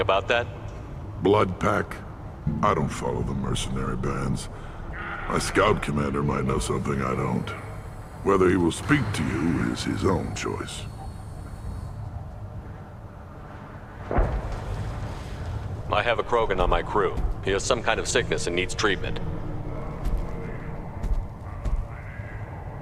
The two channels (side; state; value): both; identical; correlation 1.00